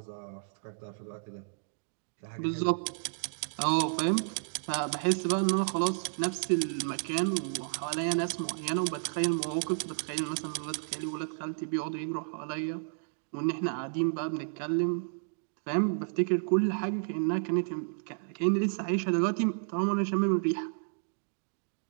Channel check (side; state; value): left; silent; digital silence